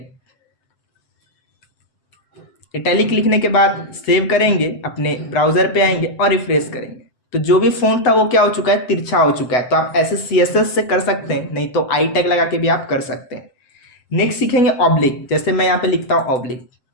इटैलिक लिखने के बाद सेव करेंगे, अपने ब्राउजर पे आएंगे और रिफ्रेश करेंगे तो जो भी फ़ॉन्ट था वो क्या हो चुका है, तिरछा हो चुका है। तो आप ऐसे CSS से कर सकते हैं, नहीं तो आई टैग लगा के भी आप कर सकते हैं। नेक्स्ट सीखेंगे ऑब्लिक। जैसे मैं यहाँ पे लिखता हूँ ऑब्लिक,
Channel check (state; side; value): late; right; 8.0 ms